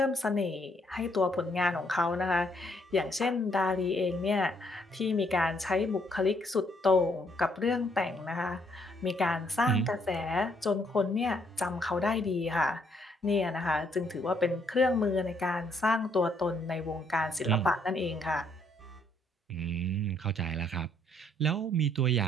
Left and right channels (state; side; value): normal; both; correlation 0.70